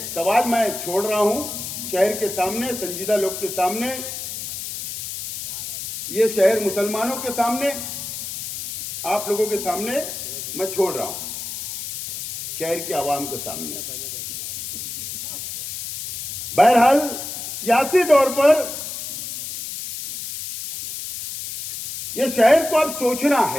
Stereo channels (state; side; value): noise; left; hiss, 7 dB below the sound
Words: सवाल मैं छोड़ रहा हूं शहर के सामने, संजीदा लोग के सामने, ये शहर मुसलमानों के सामने, आप लोगों के सामने मैं छोड़ रहा हूं, शहर के आवाम के सामने। बहरहाल सियासी तौर पर यह शहर को अब सोचना